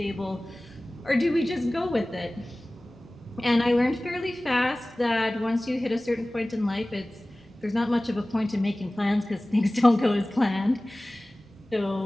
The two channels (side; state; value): both; normal; correlation 0.98